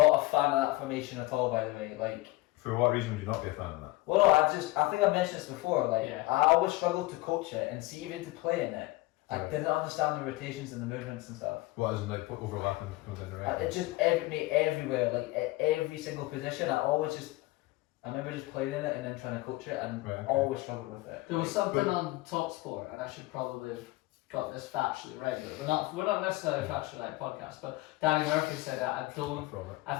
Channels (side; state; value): right; quieter; 19.9 dB